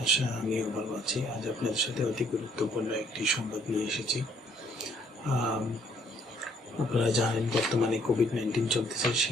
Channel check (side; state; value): both; normal; correlation 0.65